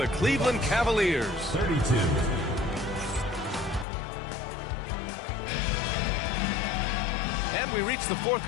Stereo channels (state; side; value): drops out; right; at 3.9 s